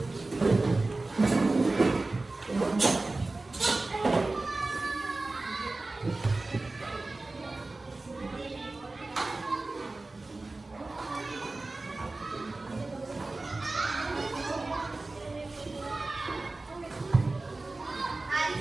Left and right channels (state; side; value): quieter; left; 3.2 dB